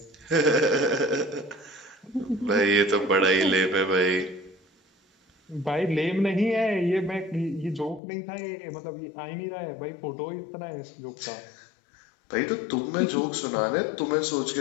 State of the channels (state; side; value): drops out; right; at 8.0 s